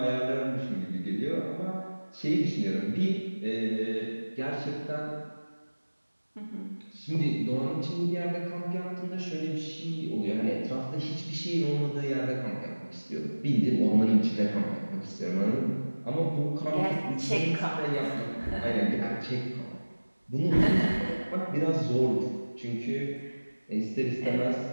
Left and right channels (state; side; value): inverted; both; correlation -1.00